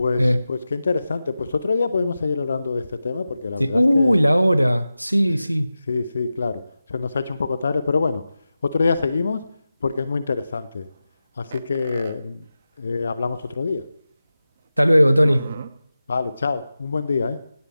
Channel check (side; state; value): both; inverted; correlation -0.93